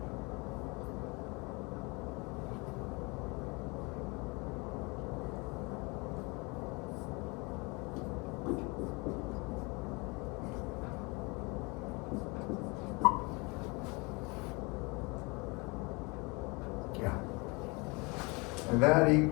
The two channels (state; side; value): quieter; right; 28.1 dB